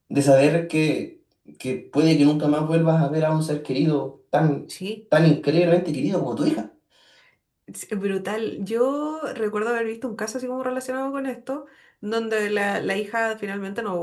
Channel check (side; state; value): both; identical; correlation 1.00